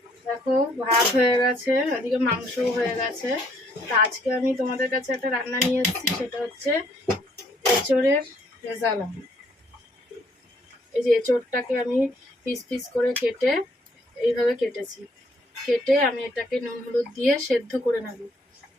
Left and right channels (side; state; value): both; normal; correlation 0.67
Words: দেখো ভাত হয়ে গেছে, এদিকে মাংসও হয়ে গেছে। তা আজকে আমি তোমাদের কাছে একটা রান্না নিয়ে এসেছি, সেটা হচ্ছে এঁচোড়ের রেজালা। এই যে এঁচোড়টাকে আমি পিস পিস করে কেটে এইভাবে কেটেছি। কেটে আমি এটাকে নুন হলুদ দিয়ে সেদ্ধ করে নেব।